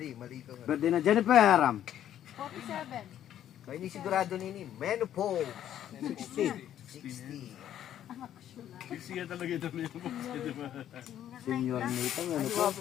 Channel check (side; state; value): right; quieter; 11.0 dB